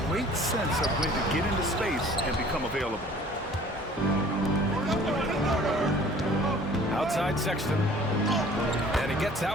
great sense of when to get into space and become available. Outside Sexton. And he gets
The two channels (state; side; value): normal; both; correlation 0.51